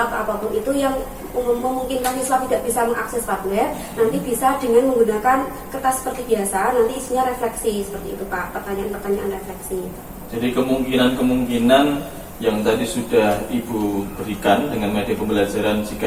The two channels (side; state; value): both; identical; correlation 1.00